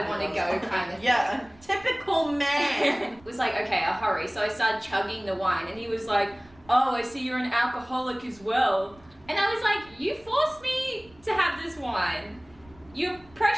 want to go, kind of. Yeah, typical man. Was like, okay, I'll hurry. So I started chugging the wine, and he was like, "Oh, I see you're an alcoholic as well." And I was like, "You forced me to have this wine. You're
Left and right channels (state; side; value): noise; right; rumble, 26 dB below the sound